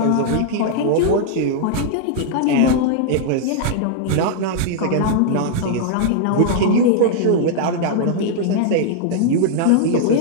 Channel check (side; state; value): both; different; correlation -0.01